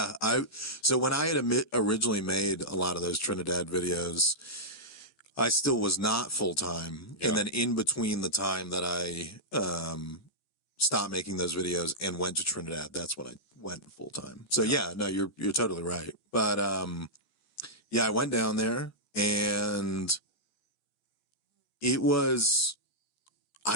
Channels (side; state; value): right; late; 14 ms